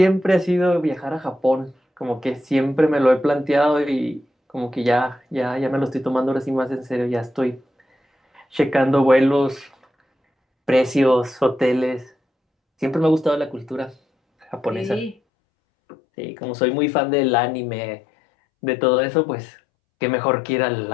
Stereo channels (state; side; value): drops out; right; at 15.2 s